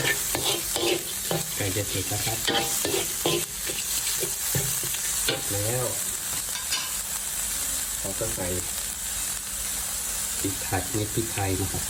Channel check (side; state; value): both; identical; correlation 1.00